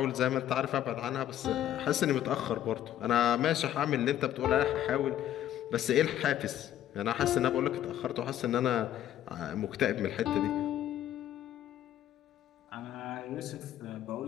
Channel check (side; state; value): right; quieter; 11.8 dB